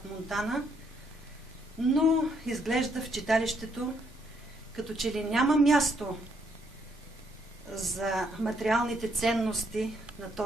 Монтана, но изглежда в читалището като че ли няма място за материалните ценности на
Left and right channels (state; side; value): normal; both; correlation 0.72